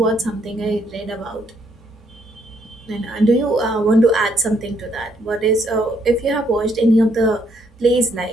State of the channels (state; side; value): normal; both; correlation 0.71